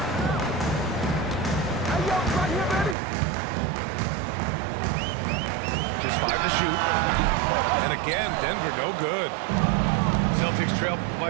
Just 5 to shoot. And again, Denver no good. Celtics trail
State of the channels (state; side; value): drops out; left; at 3.0 s